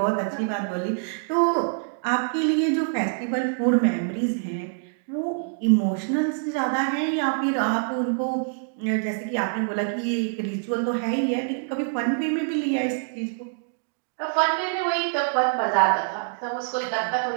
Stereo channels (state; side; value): silent; left; digital silence